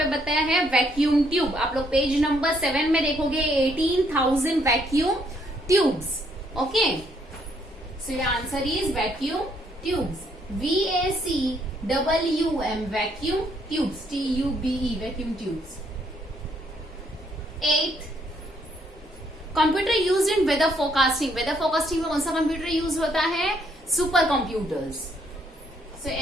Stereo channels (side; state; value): both; normal; correlation 0.70